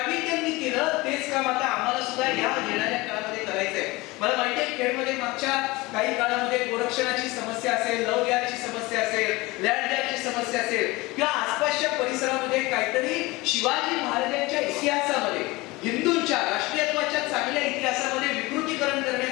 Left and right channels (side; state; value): right; quieter; 22.1 dB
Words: त्यांनी केलं तेच काम आता आम्हाला सुद्धा या येणाऱ्या काळामध्ये करायचंय. मला माहिती आहे खेडमध्ये मागच्या काही काळामध्ये गोरक्षणाची समस्या असेल, लव द्याची समस्या असेल, लँड द्याची समस्या असेल, किंवा आसपासच्या परिसरामध्ये काहीतरी शिवाजी महाराजांच्या इतिहासामध्ये, हिंदूंच्या राष्ट्रीयत्वाच्या चांगल्या इतिहासामध्ये विकृतीकरण